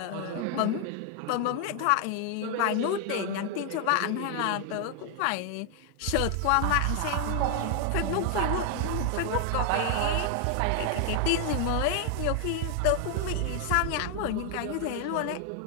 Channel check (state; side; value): different; both; correlation 0.00